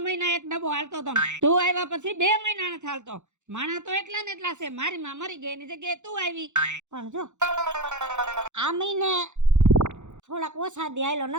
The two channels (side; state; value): left; late; 0.84 ms